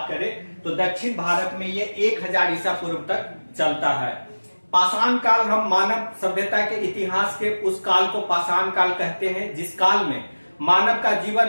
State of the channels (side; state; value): both; inverted; correlation -1.00